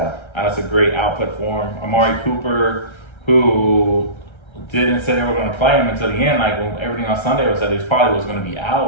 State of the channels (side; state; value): right; late; 1.3 ms